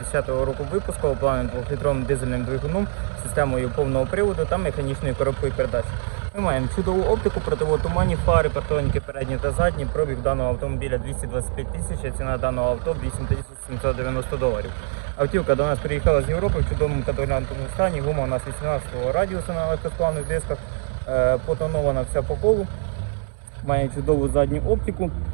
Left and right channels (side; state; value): left; silent; digital silence